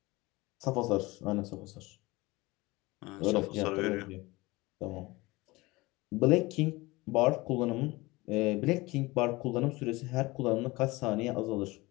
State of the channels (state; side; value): quieter; right; 21.9 dB